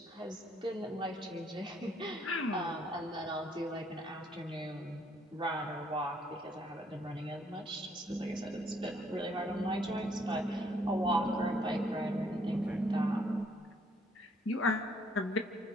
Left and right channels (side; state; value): both; normal; correlation 0.67